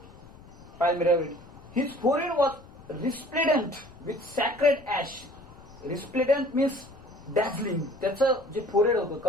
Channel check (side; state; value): left; noise; rumble, 21 dB below the sound